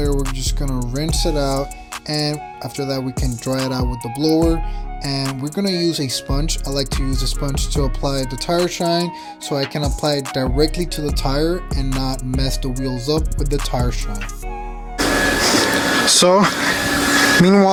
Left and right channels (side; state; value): both; identical; correlation 1.00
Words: we're just gonna rinse it out, and after that we can dry it out with the blower. And we're gonna use a sponge. I like to use a sponge to apply the tire shine, so I can apply it directly to the tire and not mess the wheels up with the tire shine. So